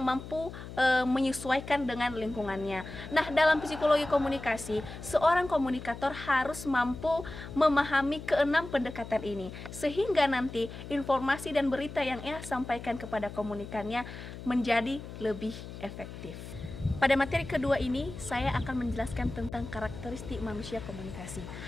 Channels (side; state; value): left; noise; hum, 12 dB below the sound